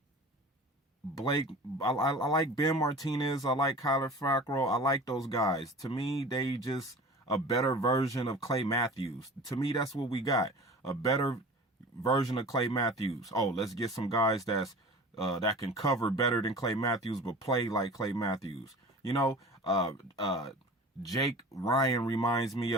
Blake, I like Ben Martinez, I like Kyler Fackrell, I like those guys. To me, they just a better version of Clay Matthews. To me, that's what we got. A better version of Clay Matthews. Oh, let's get some guys that can cover better than Clay Matthews, but play like Clay Matthews. Jake Ryan reminds me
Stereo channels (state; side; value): normal; both; correlation 0.39